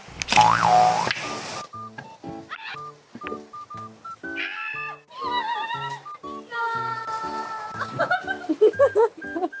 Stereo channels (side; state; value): both; identical; correlation 1.00